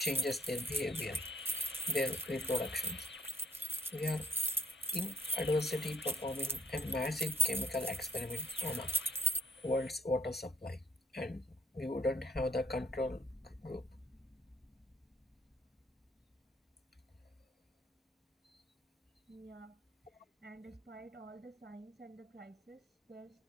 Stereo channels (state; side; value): normal; both; correlation 0.58